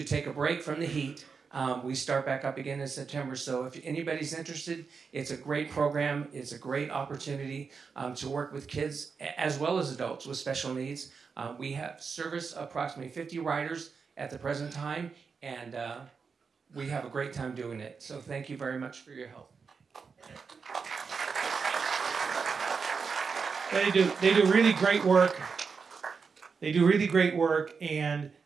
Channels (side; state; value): left; quieter; 5.4 dB